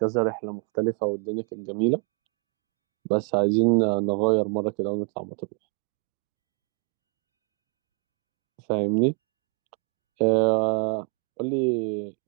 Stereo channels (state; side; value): quieter; left; 39.4 dB